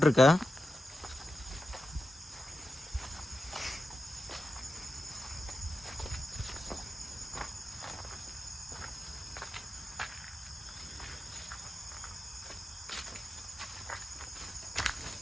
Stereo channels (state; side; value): normal; both; correlation 0.91